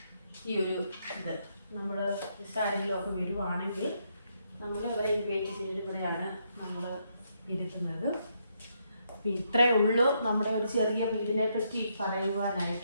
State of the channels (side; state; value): both; inverted; correlation -0.77